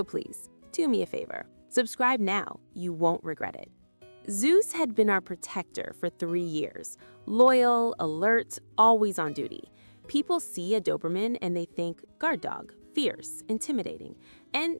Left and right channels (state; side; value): inverted; both; correlation -1.00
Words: please, do me a favor. Subscribe now. You won't regret it. Zeus had been our protector for 3 years. Loyal, alert, always on duty. People see a Doberman and they think guard dog, fierce, intimidating.